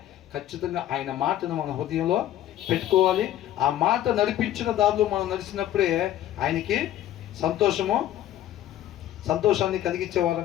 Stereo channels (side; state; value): right; quieter; 12.5 dB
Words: ఖచ్చితంగా ఆయన మాటను మన హృదయంలో పెట్టుకోవాలి. ఆ మాట నడిపించిన దారిలో మనం నడిచినప్పుడే ఆయనకి సంతోషాన్ని